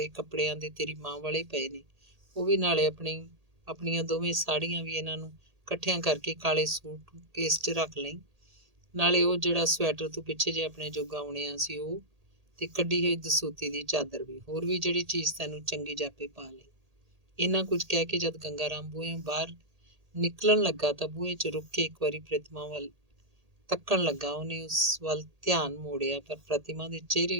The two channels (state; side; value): late; left; 1.8 ms